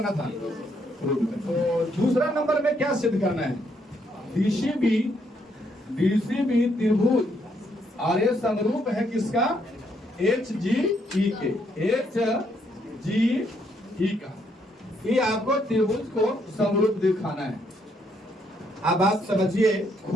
था, तो दूसरा नंबर में क्या सिद्ध करना है, डीसीबी त्रिभुज और ये समरूप है किसका, एच जी ई के, एच जी ई का, ये आपको त्रिभुज को समरूप दिखाना है। अब आप समझिए,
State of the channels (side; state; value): both; normal; correlation 0.73